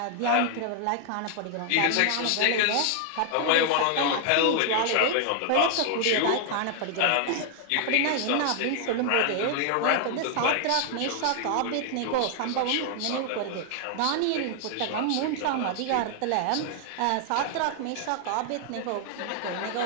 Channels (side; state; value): both; different; correlation 0.00